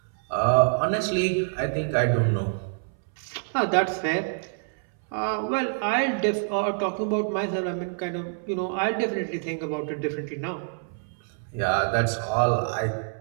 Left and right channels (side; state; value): left; silent; 61 dB below the other